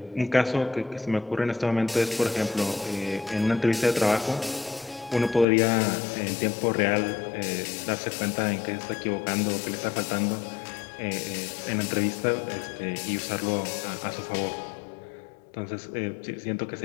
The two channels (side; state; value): right; drops out; at 5.5 s